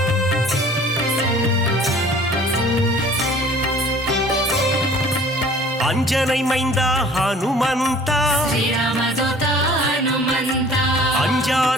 ಅಂಜನೈ ಮೈಂದ ಹನುಮಂತ ಶ್ರೀರಾಮದೂತ ಹನುಮಂತ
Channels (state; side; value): normal; both; correlation 0.50